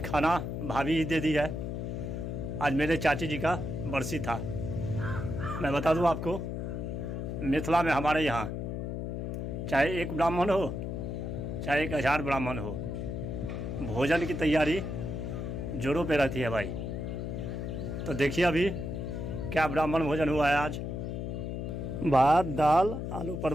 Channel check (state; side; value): noise; left; hum, 4 dB below the sound